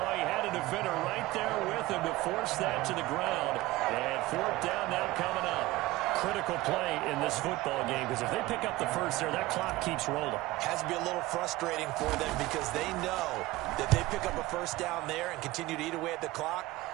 he had a defender right there with him to force that to the ground. And fourth down now coming up. Critical play in this football game, because if they pick up the first there, that clock keeps rolling. Has to be a little frustrating for them because they know that they pick up a first down there and continue to eat away at the clock,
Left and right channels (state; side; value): quieter; left; 18.8 dB